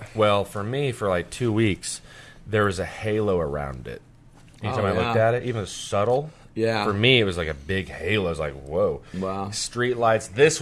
Well, for me, for like 2 weeks, there was a halo around it. Anytime Oh, I looked yeah. at it, even subtle, Yeah. for me, it was like a big halo. It was like, whoa. Wow. Street lights, this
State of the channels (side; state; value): both; identical; correlation 1.00